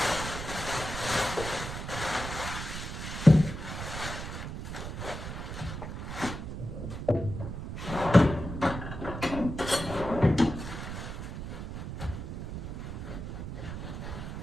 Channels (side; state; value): right; noise; rumble, 7 dB below the sound